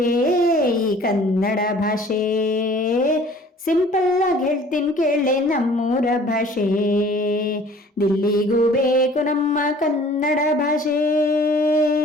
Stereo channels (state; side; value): normal; both; correlation 0.51